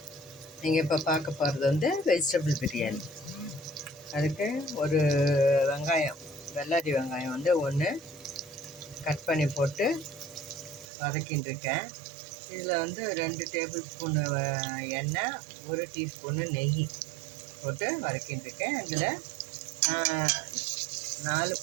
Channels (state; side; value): drops out; left; at 10.9 s